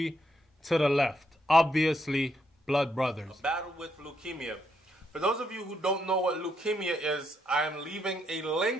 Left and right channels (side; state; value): both; normal; correlation 0.77